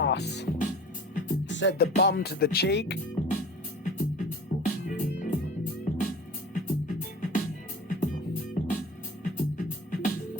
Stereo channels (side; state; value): both; normal; correlation 0.40